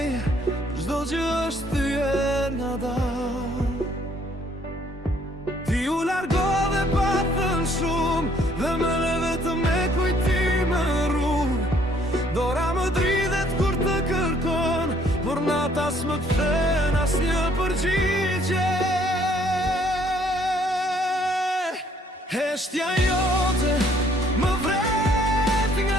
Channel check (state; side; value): normal; both; correlation 0.64